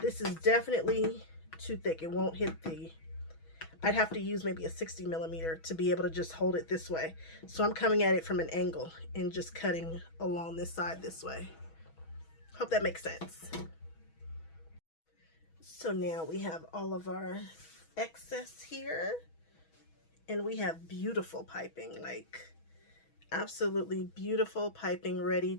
is definitely too thick. It won't hit the... I'd have to use maybe a 60 millimeter to be able to just hold it this way. So I'm coming at it from an angle and just cutting along this side this way. Hope that makes sense. So now we have all of our excess here. And we have beautiful piping, like absolutely beautiful piping ready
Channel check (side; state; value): right; late; 6.2 ms